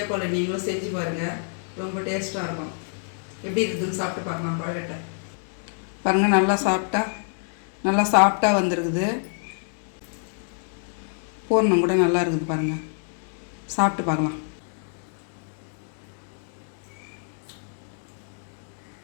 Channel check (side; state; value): right; silent; 59 dB below the other